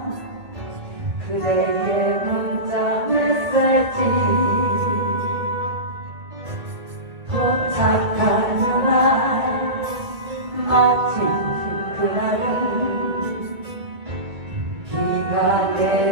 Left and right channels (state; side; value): late; left; 1.8 ms